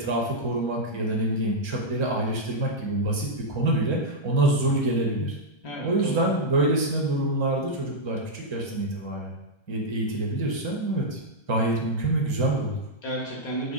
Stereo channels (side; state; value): right; late; 1.3 ms